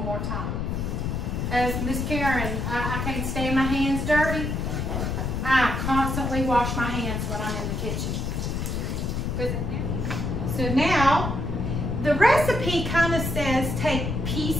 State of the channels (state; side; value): noise; left; rumble, 2 dB below the sound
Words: more time. As Miss Karen, I can't stand my hands dirty. I constantly wash my hands when I'm in the kitchen. So now, the recipe kind of says take